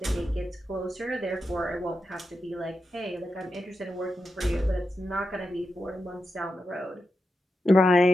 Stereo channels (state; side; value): normal; both; correlation 0.88